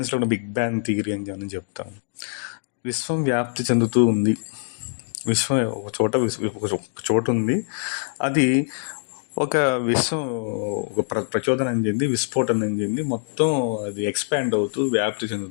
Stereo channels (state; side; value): silent; right; digital silence